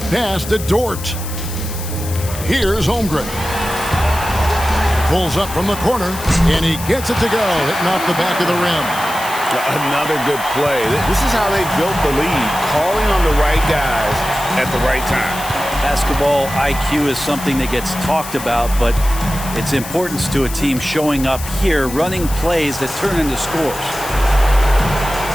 Pass to Dort. Here's Holmgren. Pulls up from the corner, and he gets it to go, hitting off the back of the rim. Another good play. This is how they built the lead, calling on the right guys at the right time. Basketball IQ is something that gets talked about, but its importance to a team showing up here, running plays that turn into scores.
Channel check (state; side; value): noise; left; hiss, 11 dB below the sound